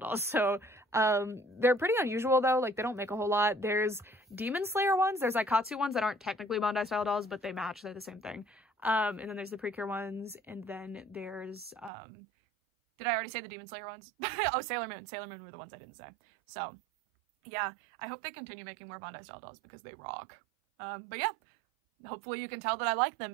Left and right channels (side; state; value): left; drops out; at 11.9 s